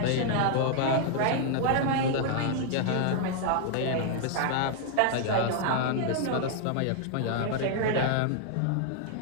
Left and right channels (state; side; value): different; both; correlation 0.00